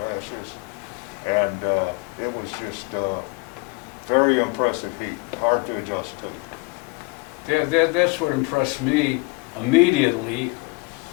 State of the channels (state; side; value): quieter; right; 27.2 dB